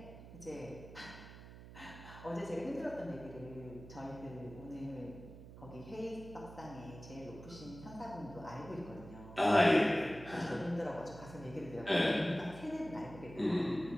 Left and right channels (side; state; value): right; noise; hum, 15 dB below the sound